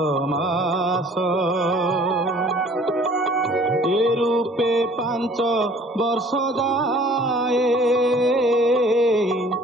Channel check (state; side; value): normal; both; correlation 0.53